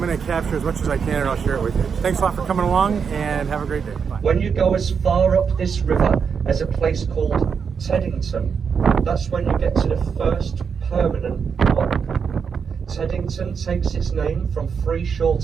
to capture as much as I can and I'll share it with you. Thanks a lot for coming along and have a great day. Bye. When you go as far up this river as a place called Teddington, that's when you get to the first permanent lock. Teddington takes its name from three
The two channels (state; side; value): quieter; left; 6.4 dB